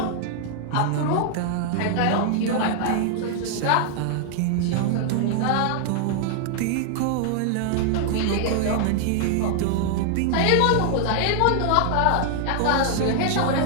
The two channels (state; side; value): different; both; correlation 0.00